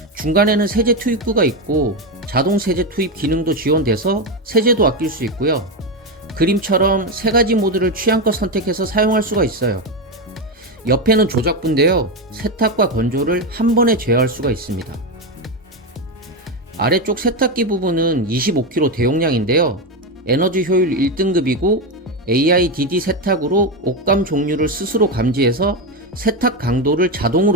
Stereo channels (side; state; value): both; normal; correlation 0.11